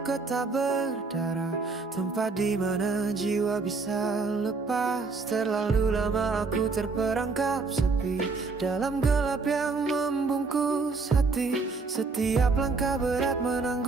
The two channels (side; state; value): left; quieter; 4.2 dB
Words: tak berdarah, tempat di mana jiwa bisa lepas. Terlalu lama aku terperangkap sepi dalam gelap yang membungkus hati. Setiap langkah berat